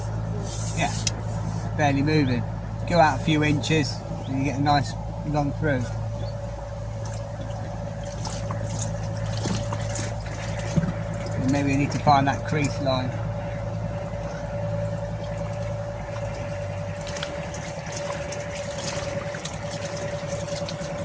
yeah, barely moving. Go out a few inches and you get a nice long through. And maybe we need to find that crease line.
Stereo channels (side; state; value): both; identical; correlation 1.00